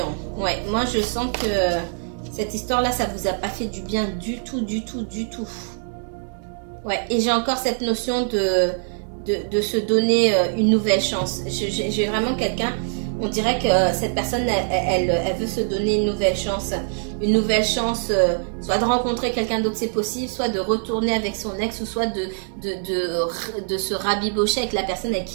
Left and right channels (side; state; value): left; silent; 62 dB below the other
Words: Ouais, moi je sens que cette histoire-là, ça vous a pas fait du bien du tout. Ouais, et j'ai encore cette notion de se donner une nouvelle chance. J'ai vraiment quelqu'un... On dirait que cette personne, elle veut se donner une nouvelle chance. Une nouvelle chance, soit de rencontrer quelqu'un d'autre, c'est possible, soit de retourner avec son ex, ou soit de se rabibocher avec la personne avec